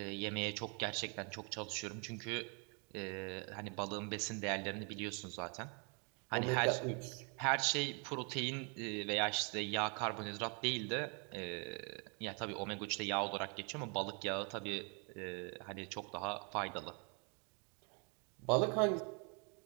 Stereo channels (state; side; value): quieter; left; 36.5 dB